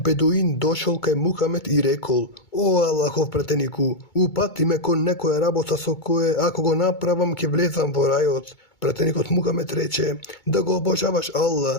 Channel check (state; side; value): late; right; 2.2 ms